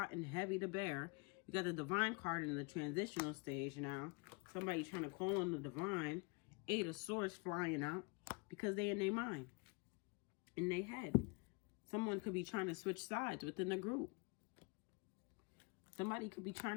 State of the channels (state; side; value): quieter; right; 30.4 dB